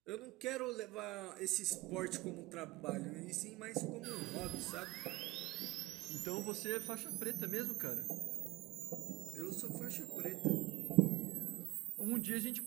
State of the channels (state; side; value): quieter; left; 19.8 dB